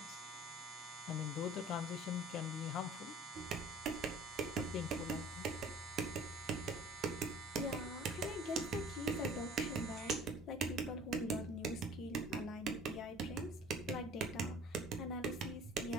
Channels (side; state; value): both; normal; correlation 0.49